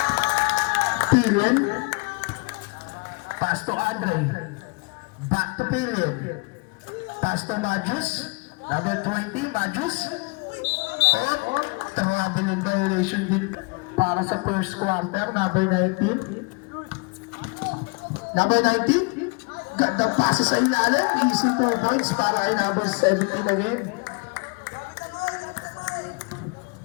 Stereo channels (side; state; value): right; quieter; 30.3 dB